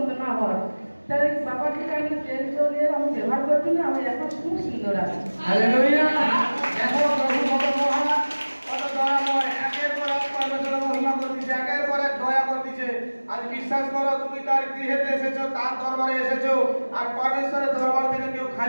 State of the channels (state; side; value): inverted; both; correlation -1.00